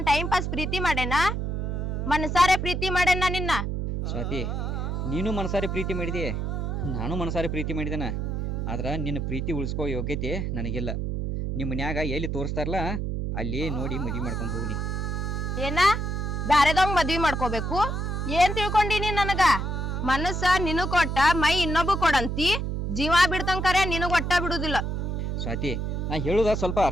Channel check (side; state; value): right; noise; hum, 2 dB below the sound